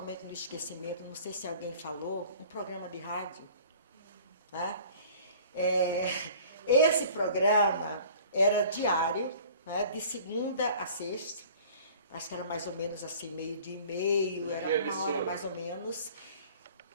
no esquecimento, não sei se alguém falou, um programa de rádio. Né? Esse programa era diário, né, de segunda a sexta, acho que era mais ou menos assim, meio-dia e meio, era uma hora mais ou menos.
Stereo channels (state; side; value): inverted; both; correlation -0.48